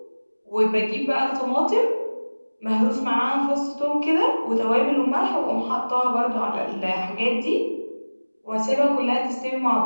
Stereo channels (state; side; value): inverted; both; correlation -1.00